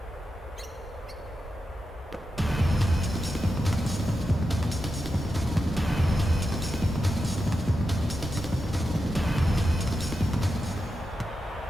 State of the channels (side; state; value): both; normal; correlation 0.88